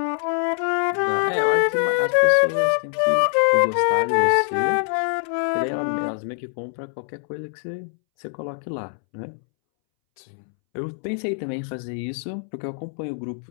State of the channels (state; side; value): silent; right; 63 dB below the other